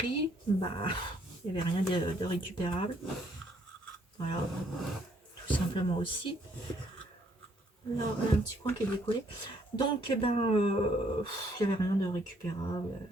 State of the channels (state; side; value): normal; both; correlation 0.67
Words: il n'y avait rien de récupérable. Voilà. Tout simplement aussi. Là, un petit coin qui est décollé. Donc, il n'y avait rien de récupérable.